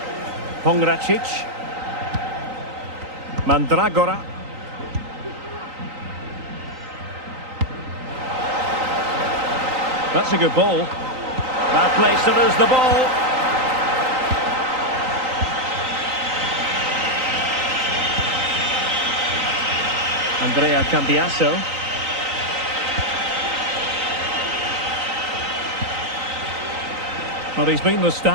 Pongracic. Mandragora. That's a good ball. Bad place to lose the ball. Andrea Cambiasso. Well, he's been the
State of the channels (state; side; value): late; left; 3.9 ms